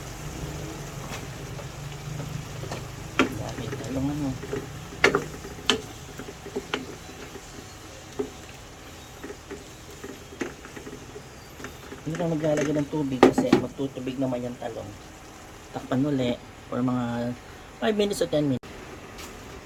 Dami talong ano. Hindi na maglalagay ng tubig kasi magtutubig naman yung talong. Takpan uli for mga 5 minutes o 10 minutes.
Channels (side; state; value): both; identical; correlation 1.00